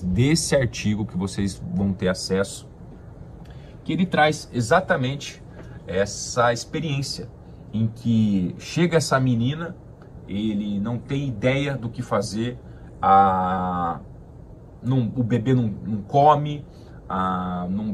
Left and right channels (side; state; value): both; identical; correlation 1.00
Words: desse artigo que vocês vão ter acesso, que ele traz exatamente essa experiência em que chega essa menina, ele não tem ideia do que fazer, o bebê não come, não